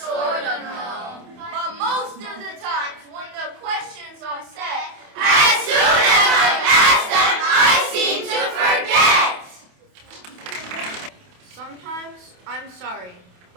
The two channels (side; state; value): left; late; 28 ms